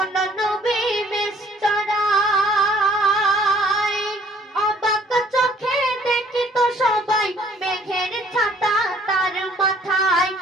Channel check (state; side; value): normal; both; correlation 0.58